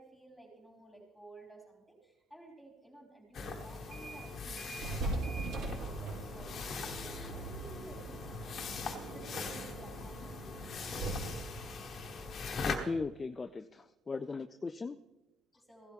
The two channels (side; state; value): both; normal; correlation 0.68